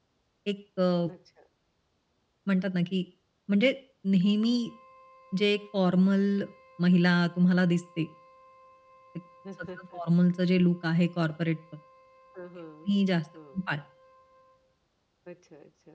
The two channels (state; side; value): identical; both; correlation 1.00